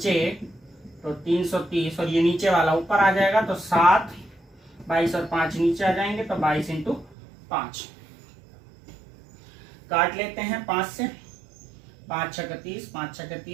तो 330 और ये नीचे वाला ऊपर आ जाएगा, तो 7, 22 और 5 नीचे आ जाएंगे, तो 22 × 5 काट लेते हैं 5 से। 5 × 30, 5 ×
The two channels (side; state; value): left; drops out; at 7.2 s